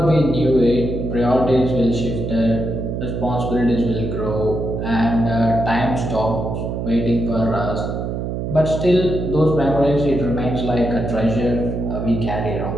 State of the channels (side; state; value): right; noise; hum, 3 dB below the sound